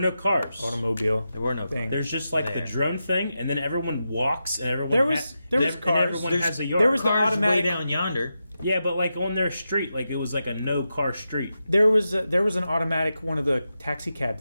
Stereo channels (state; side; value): inverted; both; correlation -0.89